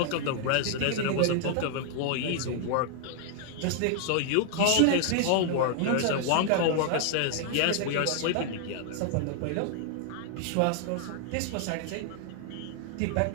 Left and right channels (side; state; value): both; different; correlation 0.00